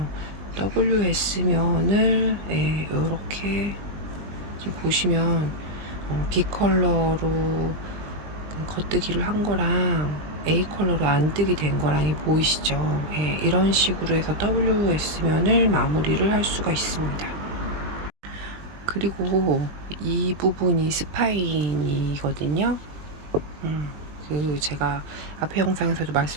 WS면을 이렇게 지금 보시면 B 컬러로 겉뜨기를 한 거랑 A 컬러로 안뜨기 된 거랑이 보이시죠? 이런 식으로 해서 WS면을 마무리를 할 수가 있습니다. 그리고 이 부분이 스파인이거든요. 제가 앞에 영상에서도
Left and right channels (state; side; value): late; left; 20 ms